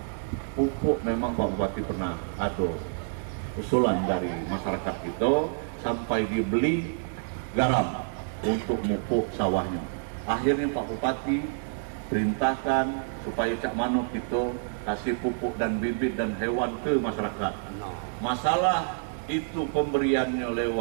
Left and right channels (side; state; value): left; silent; digital silence